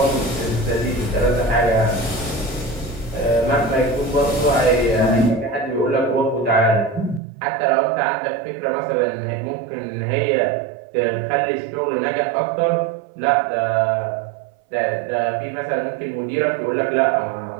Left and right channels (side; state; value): left; drops out; at 7.2 s